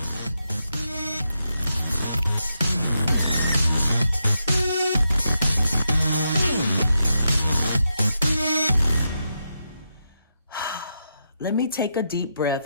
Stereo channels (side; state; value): both; inverted; correlation -0.84